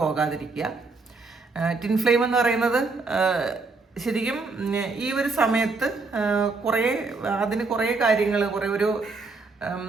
ടിൻ ഫ്ലെയിം എന്ന് പറയുന്നത് ശരിക്കും ഈ ഒരു സമയത്ത് അതിന് കുറേ കാര്യങ്ങൾ,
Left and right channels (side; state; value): left; quieter; 3.9 dB